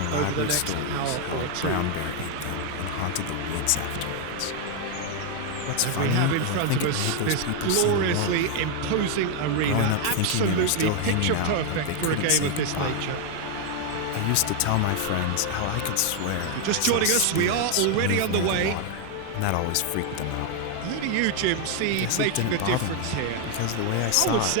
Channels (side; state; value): both; different; correlation 0.01